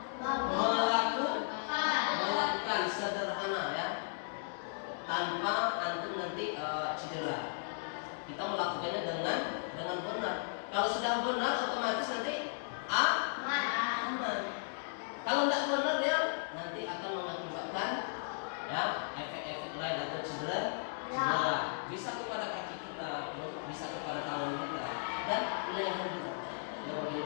melakukan sederhana, ya, tanpa antum nanti cedera. Kita melakukannya dengan benar. Kalau sudah benar, otomatis nanti aman. Kalau tidak benar, dia nanti akan mengakibatkan, ya, efek-efek lain atau cedera. Bisa kepada kaki kita, bisa kepada tangan kita, dan leher kita, ya,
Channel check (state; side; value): silent; right; digital silence